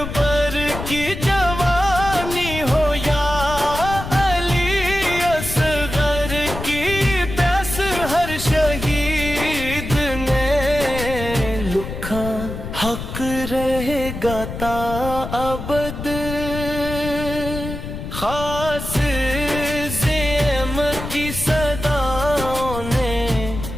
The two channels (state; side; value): noise; left; rumble, 8 dB below the sound